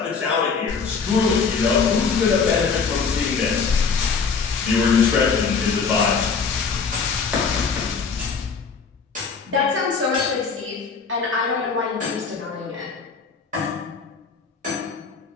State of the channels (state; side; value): quieter; right; 5.4 dB